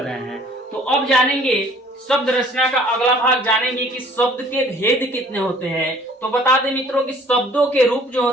हैं। तो अब जानेंगे शब्द रचना का अगला भाग, जानेंगे कि शब्द के भेद कितने होते हैं। तो बता दें मित्रों कि शब्दों के रूप जो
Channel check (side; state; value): both; normal; correlation 0.55